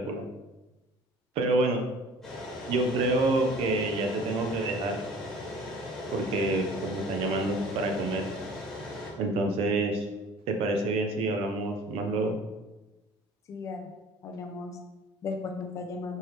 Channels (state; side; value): normal; both; correlation 0.48